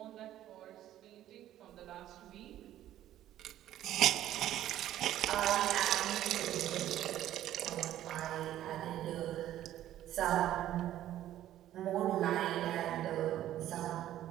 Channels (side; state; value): left; quieter; 12.7 dB